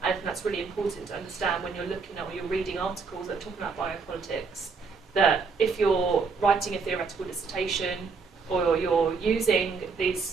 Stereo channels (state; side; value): quieter; left; 4.8 dB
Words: And I think that's really important to understand when you're looking at or you're reading articles that are talking about biopolitics, that if you're writing a theoretical dissertation or you're using these